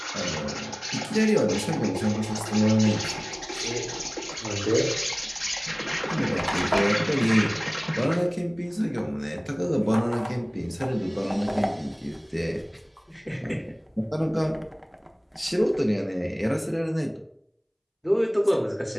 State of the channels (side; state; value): both; identical; correlation 1.00